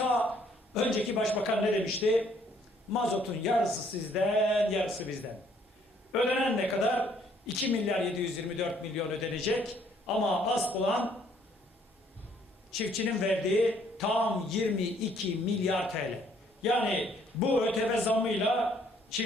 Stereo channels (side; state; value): both; normal; correlation 0.64